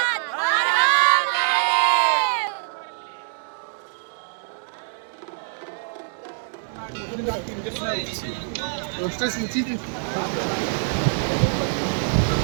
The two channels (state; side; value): silent; left; digital silence